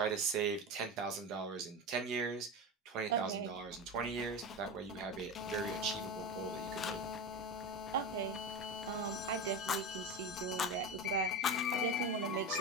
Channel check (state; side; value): normal; both; correlation 0.22